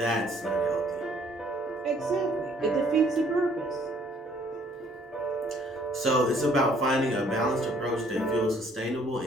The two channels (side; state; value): both; normal; correlation 0.61